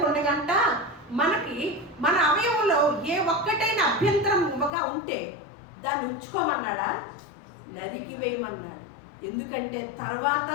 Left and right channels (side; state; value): right; drops out; at 4.7 s